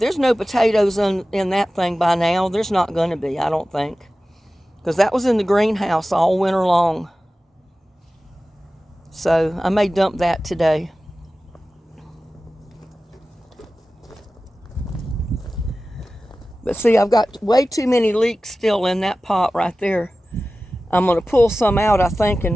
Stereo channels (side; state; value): both; normal; correlation 0.96